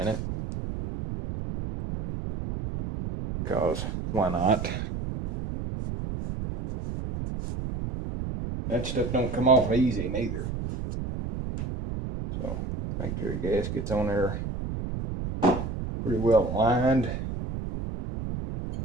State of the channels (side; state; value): right; noise; rumble, 5 dB below the sound